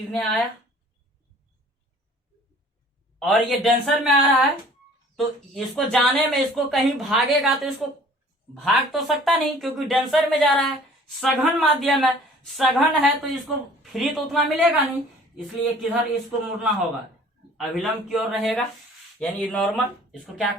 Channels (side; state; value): both; normal; correlation 0.51